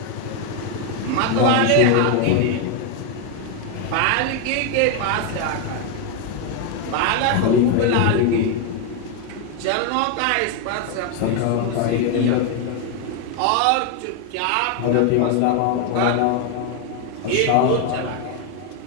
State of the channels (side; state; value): both; different; correlation 0.01